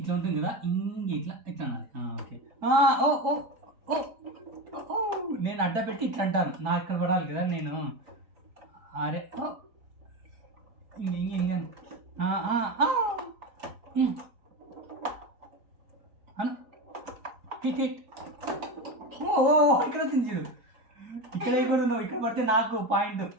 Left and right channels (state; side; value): late; left; 4.2 ms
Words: ఉంటుంది కదా. ఇంగే ఇట్లా అనాలి. ఓకే. నేను అడ్డ పెట్టి ఇట్లా అంటాను. నాకు ఇక్కడ పడాలి కదా నేను. అరే ఇంగే హిట్. ఇక్కడ వచ్చింది చూడు. ఇక్కడ కూడా నువ్వు ఇక్కడ పడితే నాకు పాయింట్.